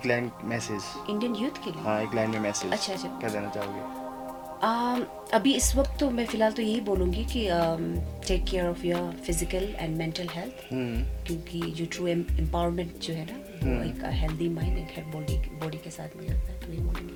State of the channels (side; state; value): both; identical; correlation 1.00